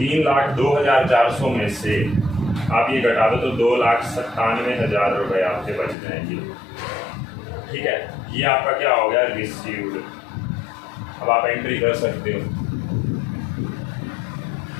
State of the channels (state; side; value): drops out; right; at 6.0 s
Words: में से आप ये घटा दो तो 2,97,000 रुपये आपके बच जाएंगे। ठीक है, ये आपका क्या हो गया, रिसीव्ड। अब आप एंट्री कर सकते हो।